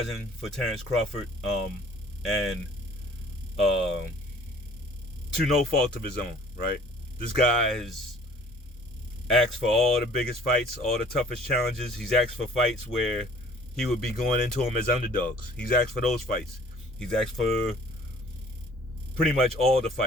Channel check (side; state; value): both; normal; correlation 0.53